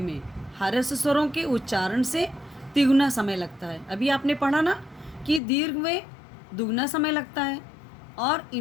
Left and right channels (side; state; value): right; drops out; at 5.4 s